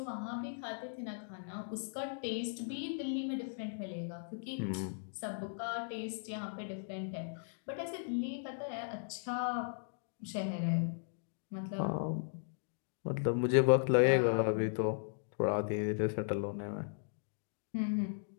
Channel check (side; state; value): right; silent; digital silence